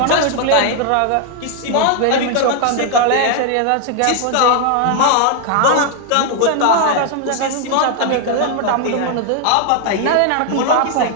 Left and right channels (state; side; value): different; both; correlation 0.00